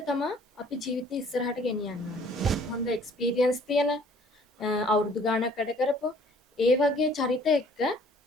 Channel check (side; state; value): both; normal; correlation 0.56